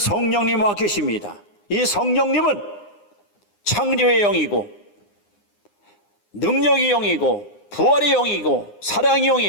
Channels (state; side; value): late; right; 9.8 ms